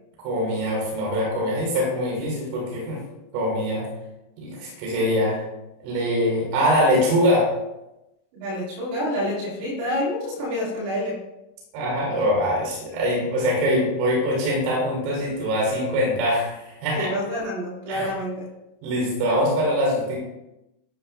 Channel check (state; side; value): late; left; 31 ms